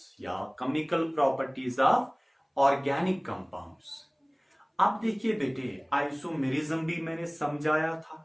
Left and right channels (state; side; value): identical; both; correlation 1.00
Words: या chemical properties of organic compounds. अब देखिए बेटे, आइसोमेरिज्म भी मैंने समझाया